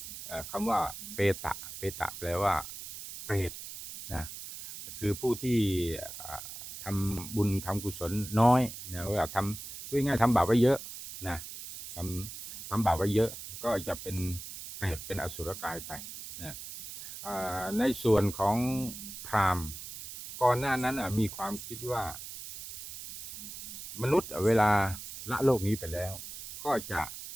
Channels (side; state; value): right; noise; hiss, 11 dB below the sound